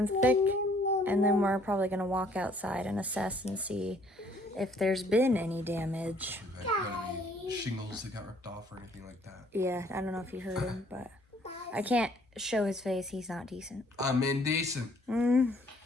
thick. And then we're probably going to walk outside and assess and see if there's been any damage. Any shingles that got ripped off or anything like that? Yeah, I don't know if you heard him, but I can't show his face. He's not decent. I'm indecent.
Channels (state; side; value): normal; both; correlation 0.62